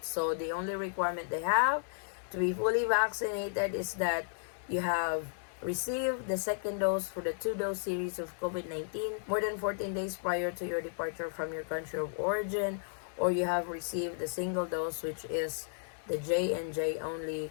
So the only requirement they have to be fully vaccinated is that you have received the second dose for the 2-dose series of COVID-19 more than 14 days prior to your departure from your country of origin, or you have received the single dose, which is the J&J only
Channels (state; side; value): silent; right; digital silence